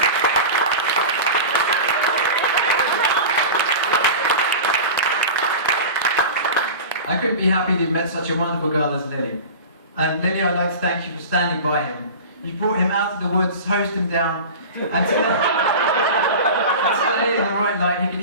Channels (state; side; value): inverted; both; correlation -0.32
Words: I couldn't be happy that you met such a wonderful girl as Lili. And Lili, I'd like to thank you for standing by him. You brought him out of the woods, hosed him down, and today, in the right light, he